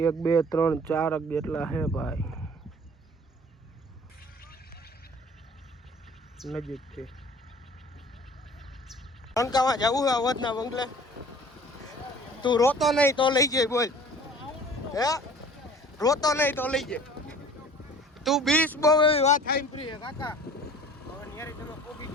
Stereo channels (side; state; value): both; normal; correlation 0.47